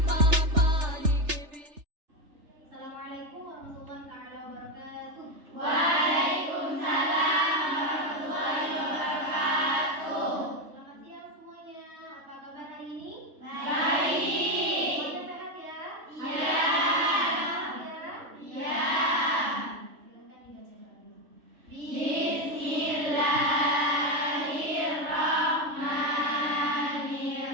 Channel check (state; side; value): late; left; 3.4 ms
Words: body giving. Assalamualaikum warahmatullahi taala wabarakatuh. Waalaikumsalam warahmatullahi wabarakatuh. Selamat siang semuanya. Apa kabar hari ini? Baik. Semuanya sehat ya? Iya. Sehat ya? Iya. Silakan dibaca doanya.